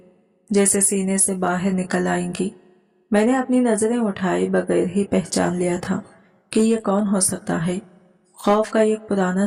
जैसे सीने से बाहर निकल आएंगी। मैंने अपनी नजरें उठाए बगैर ही पहचान लिया था कि ये कौन हो सकता है। खौफ का एक पुराना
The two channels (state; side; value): identical; both; correlation 1.00